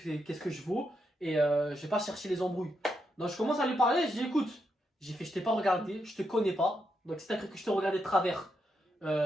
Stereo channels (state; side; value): normal; both; correlation 0.82